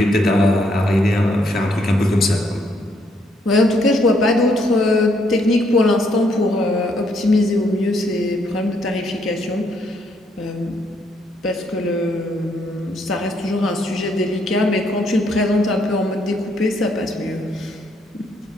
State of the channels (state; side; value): normal; both; correlation 0.72